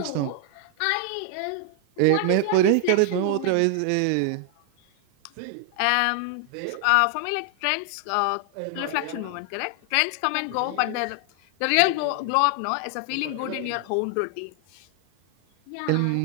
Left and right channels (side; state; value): both; different; correlation 0.00